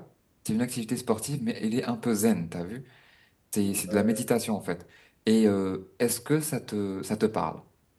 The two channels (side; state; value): both; identical; correlation 1.00